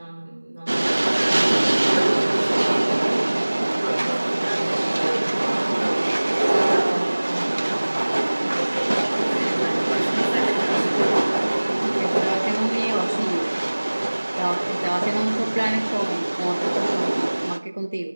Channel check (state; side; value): inverted; both; correlation -1.00